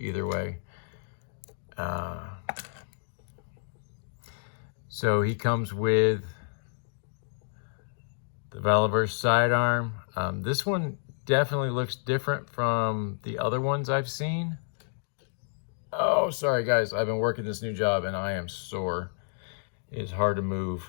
way. So he comes with the Valaverse sidearm. This one definitely looks different from the other ones I've seen. Oh, sorry guys, I've been working this new job and I am sore. It's hard to move.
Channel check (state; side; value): silent; right; digital silence